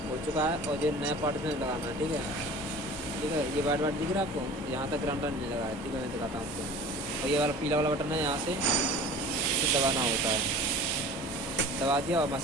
हो चुका है, और ये नया पार्ट इसमें लगाना है, ठीक है। ठीक है, ये वाइट वाइट दिख रहा है आपको, यहाँ तक ग्राउंडर नहीं लगा है, ठीक है। मैं दिखाता हूँ आपको। और ये वाला पीला वाला बटन है, यहाँ से दबाना होता है। दबा दिया और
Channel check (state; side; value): normal; both; correlation 0.41